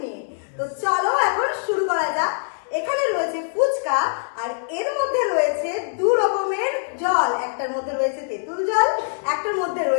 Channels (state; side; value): silent; right; 63 dB below the other